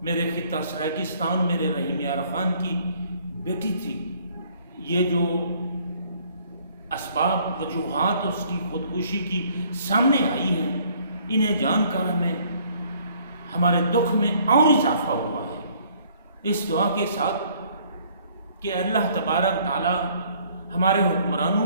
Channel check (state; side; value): inverted; both; correlation -0.61